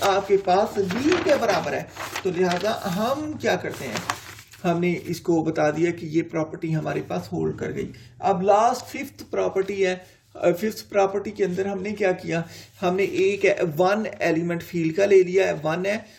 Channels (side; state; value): both; identical; correlation 1.00